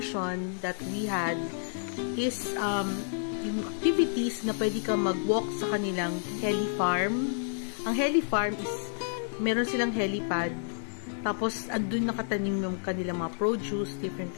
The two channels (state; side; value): silent; right; 58 dB below the other